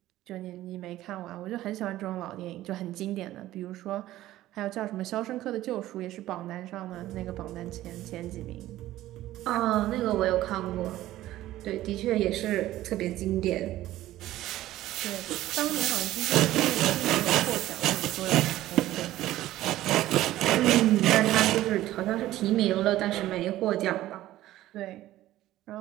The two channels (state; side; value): quieter; left; 14.9 dB